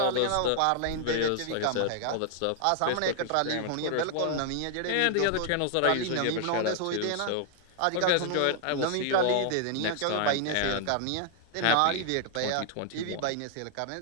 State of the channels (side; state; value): both; different; correlation 0.00